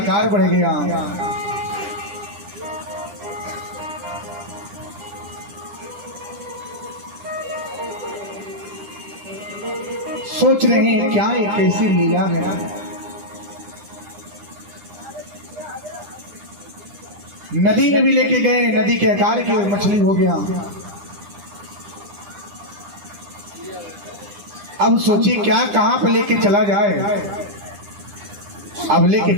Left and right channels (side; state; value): left; late; 9.9 ms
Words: बढ़ गया। सोच रहे हैं क्या ये कैसी लीला है। नदी में भी लेके गए, नदी के आकार की मछली हो गया। अब सोची क्या कहां पे लेके चला जाए। अब लेके